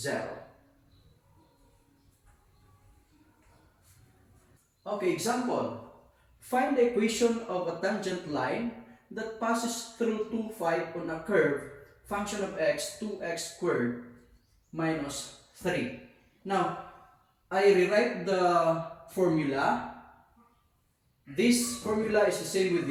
Okay, example. Find the equation of a tangent line that passes through 2, 5 on a curve function of x 2x squared minus 3. Now, I rewrite the formula. This formula is the same with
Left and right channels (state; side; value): identical; both; correlation 1.00